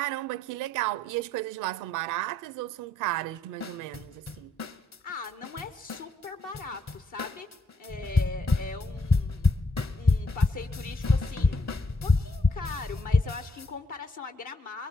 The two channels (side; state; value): both; normal; correlation 0.71